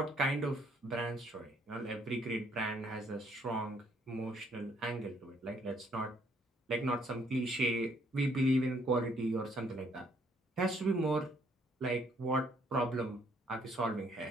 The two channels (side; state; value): both; normal; correlation 0.67